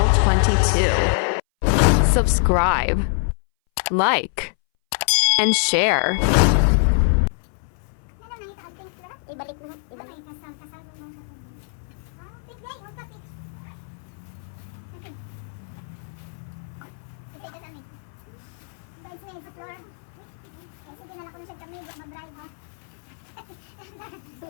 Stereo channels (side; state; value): right; silent; 60 dB below the other